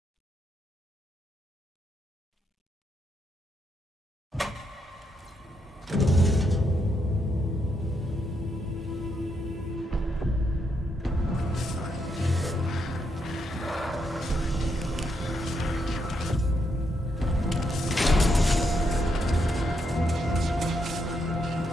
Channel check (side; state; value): both; normal; correlation 0.79